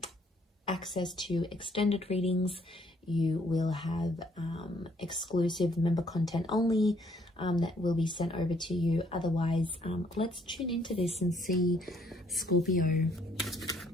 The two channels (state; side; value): normal; both; correlation 0.65